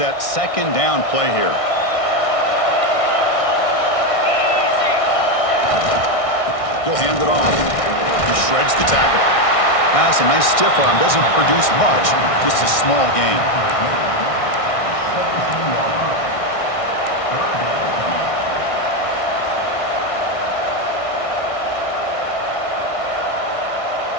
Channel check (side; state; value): right; late; 1.6 ms